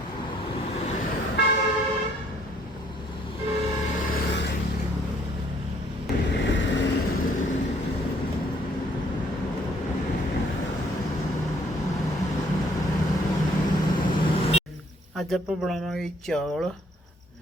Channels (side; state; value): both; normal; correlation 0.64